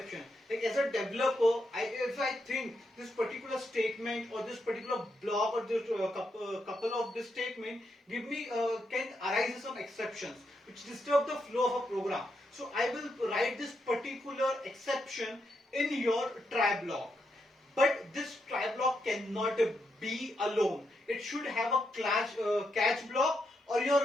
Like as a developer, if I think this particular statement or this particular block or this couple of this statement give me can arise some exceptions which disturb the flow of a program. So I will write this particular exception in your try block. But this try block cannot be alone. It should have a catch block or your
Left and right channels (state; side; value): normal; both; correlation 0.82